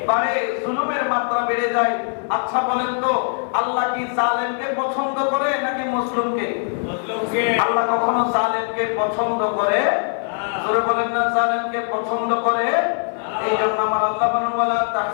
বাড়ে, জুলুমের মাত্রা বেড়ে যায়। আচ্ছা বলেন তো, আল্লাহ কি জালেমকে পছন্দ করে নাকি মুসলিমকে? মুসলিমকে। আল্লাহ কখনো জালেমকে পছন্দ করে? জোরে বলেন না, জালেমকে পছন্দ করে। এই জন্য আমার আল্লাহ বলেন, ওয়ালা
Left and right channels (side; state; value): right; silent; digital silence